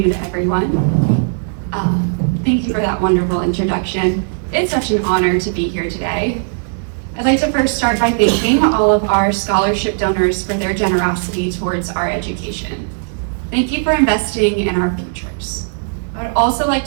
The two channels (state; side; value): silent; left; 68 dB below the other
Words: everyone. Thank you for that wonderful introduction. It's such an honor to be here today. I'd like to first start by thanking all of our scholarship donors for their generosity towards our education. Thank you for investing in our futures. I would also like